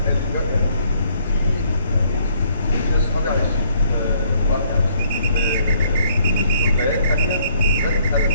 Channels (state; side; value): inverted; both; correlation -0.67